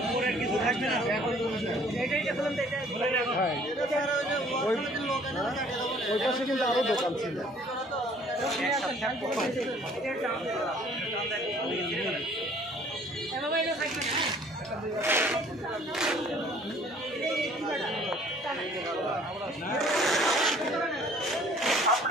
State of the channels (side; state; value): both; normal; correlation 0.56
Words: কিছু থাকবে না এটা খুলেন তো এটা ওই পাশে কিন্তু আরো দোকান ছিল।